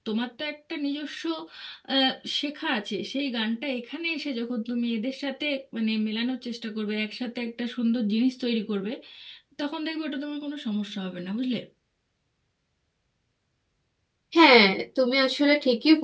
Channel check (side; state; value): both; identical; correlation 1.00